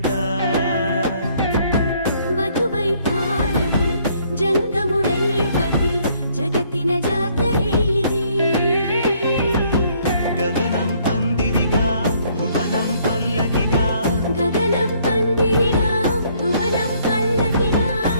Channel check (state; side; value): inverted; both; correlation -0.65